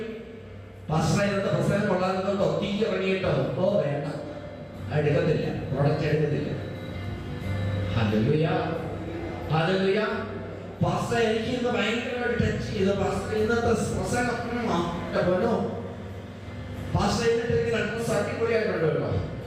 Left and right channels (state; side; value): identical; both; correlation 1.00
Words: പ്രസംഗം കൊള്ളാനോ തീ ഇറങ്ങിയിട്ടോ വേണ്ട, എടുക്കത്തില്ല, പ്രൊഡക്റ്റ് എടുക്കത്തില്ല. Hallelujah, hallelujah. പാസ്റ്റർ എനിക്ക് ഇന്ന് ഭയങ്കരമായിട്ട് ടച്ച് ചെയ്തു. പാസ്റ്റർ ഇന്നത്തെ പ്രസംഗം പോലോ പാസ്റ്റർ എന്നിട്ട് രണ്ട് അടിപൊളിയായിട്ടുണ്ട് കേട്ടോ.